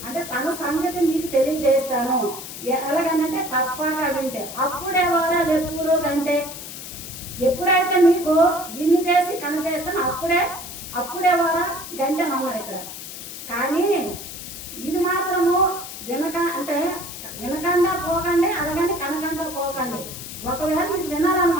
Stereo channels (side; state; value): left; noise; hiss, 11 dB below the sound